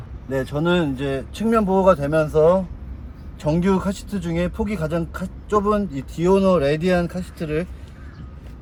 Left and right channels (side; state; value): both; identical; correlation 1.00